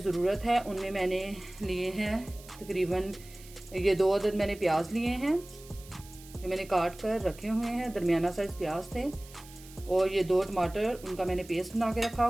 है उनमें मैंने लिए हैं तकरीबन ये 2 अदद मैंने प्याज लिए हैं जो मैंने काट कर रखे हुए हैं। दरमियाना साइज़ प्याज थे। और ये 2 टमाटर, उनका मैंने पेस्ट बना के रखा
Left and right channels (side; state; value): right; noise; hiss, 20 dB below the sound